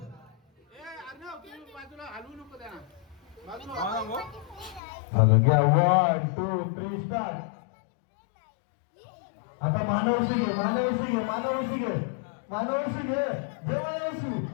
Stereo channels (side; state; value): right; drops out; at 4.8 s